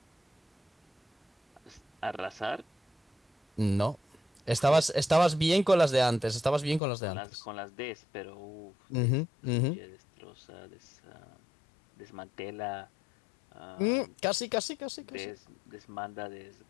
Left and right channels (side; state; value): right; drops out; at 6.8 s